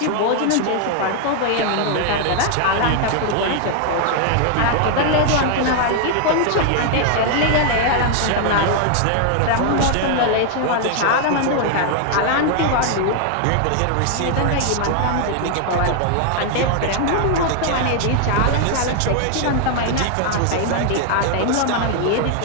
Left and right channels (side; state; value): both; different; correlation 0.00